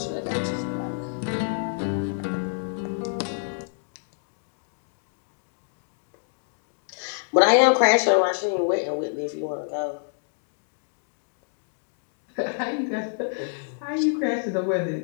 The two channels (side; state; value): right; silent; digital silence